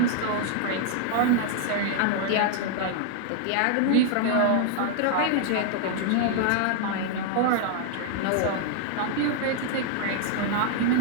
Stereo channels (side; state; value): both; different; correlation 0.00